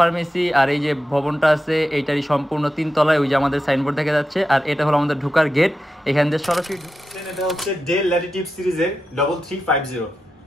আর এই যে ভবনটা আছে এইটারই সম্পূর্ণ 3 তলায় ওই যে আমাদের সাইনবোর্ড দেখা যাচ্ছে। আর এটা হলো আমাদের ঢোকার গেট, এখান থেকে সরাসরি এটা হচ্ছে ডেল ল্যাটিটিউড সিরিজের 3350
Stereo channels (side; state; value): both; normal; correlation 0.90